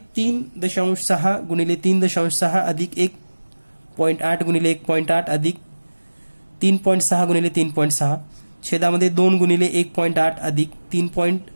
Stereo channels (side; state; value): both; inverted; correlation -1.00